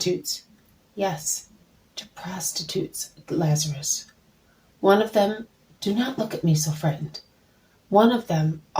Yes, to prostitutes, Lazarus. One of them, do not look at me so frightened. One of them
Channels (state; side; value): identical; both; correlation 1.00